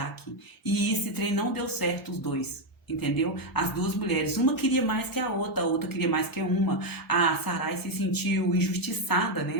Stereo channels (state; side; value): normal; both; correlation 0.04